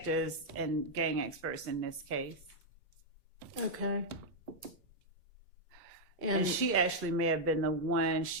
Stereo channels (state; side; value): normal; both; correlation -0.03